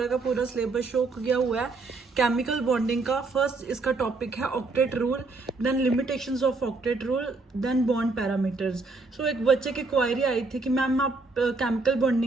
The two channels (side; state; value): left; quieter; 3.7 dB